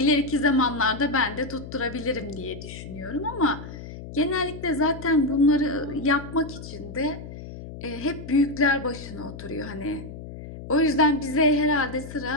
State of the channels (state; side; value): noise; left; hum, 12 dB below the sound